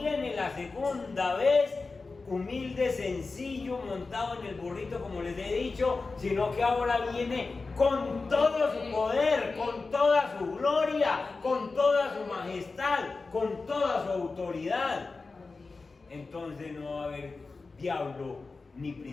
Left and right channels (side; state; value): right; quieter; 4.0 dB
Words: la segunda vez humilde, sencillo, montado en el burrito, como les he dicho, sino que ahora viene con todo su poder, con toda su gloria, con toda su majestad, con toda su autoridad. Entonces no va a haber diablo, ni